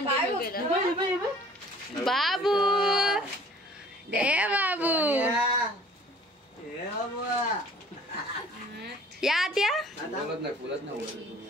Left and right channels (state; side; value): normal; both; correlation 0.51